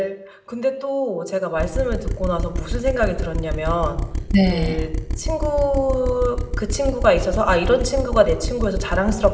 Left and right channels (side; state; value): both; identical; correlation 1.00